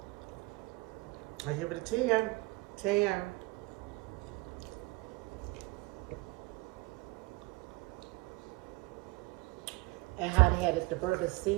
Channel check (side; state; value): left; quieter; 24.2 dB